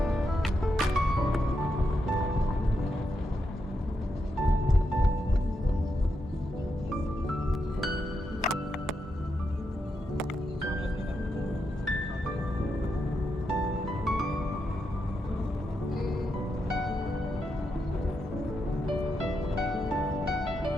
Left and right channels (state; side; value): normal; both; correlation 0.83